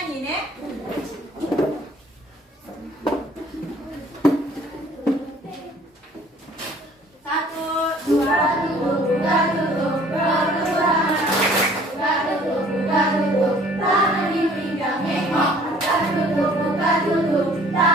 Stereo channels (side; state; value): both; normal; correlation 0.54